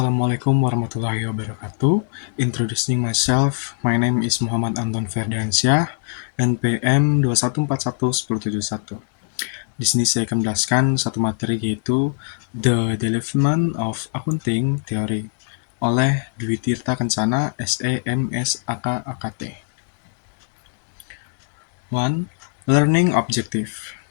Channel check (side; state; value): right; silent; digital silence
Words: warahmatullahi wabarakatuh. Introducing myself, my name is Muhammad Anton Ferdiansyah, NPM 21411071. Di sini saya akan menjelaskan satu materi yaitu The Development of Accounting Theory oleh Dwi Tirta Kencana, SE, MS, AK, AKT. 1. Learning Objective.